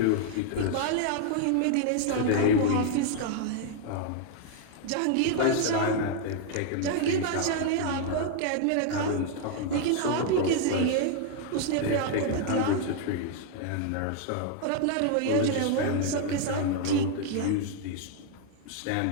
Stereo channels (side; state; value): both; different; correlation 0.00